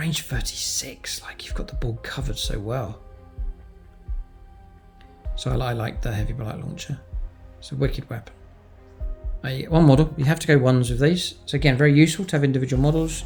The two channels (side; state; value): both; identical; correlation 1.00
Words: 36, like you've got the board covered so well. So I like the heavy blight launcher. It's a wicked weapon. One model, you have to go ones with these. So again, very useful to have individual models.